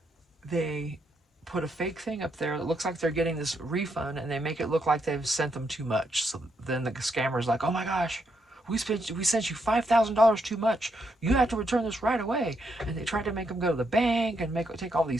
they put a fake thing up there that looks like they're getting this refund, and they make it look like they've sent them too much. So then the scammer's like, oh my gosh, we sent you $5,000 too much. You have to return this right away. And they try to make them go to the bank and take all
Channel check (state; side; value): normal; both; correlation 0.79